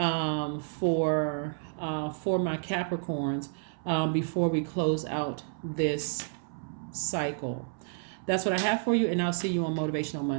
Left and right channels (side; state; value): left; silent; 58 dB below the other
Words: my Capricorns before we close out this cycle. That's what I have for you, and I'll see you on Motivational